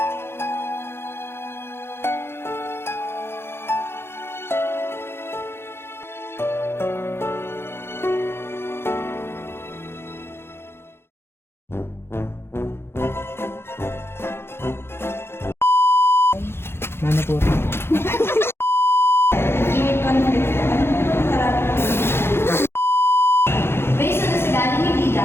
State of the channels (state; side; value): late; right; 0.12 ms